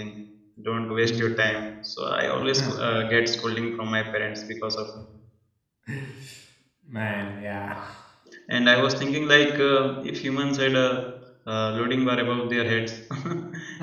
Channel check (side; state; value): both; identical; correlation 1.00